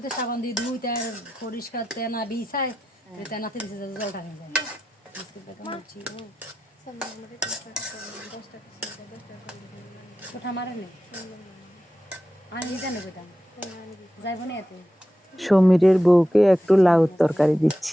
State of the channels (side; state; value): both; normal; correlation 0.90